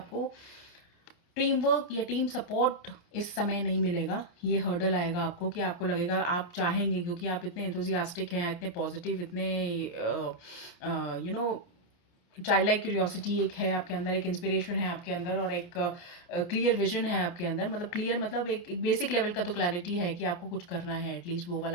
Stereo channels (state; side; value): late; right; 28 ms